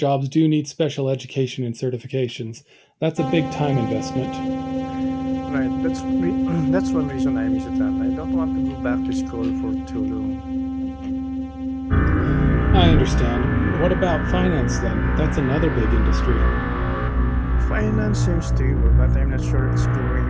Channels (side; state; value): both; identical; correlation 1.00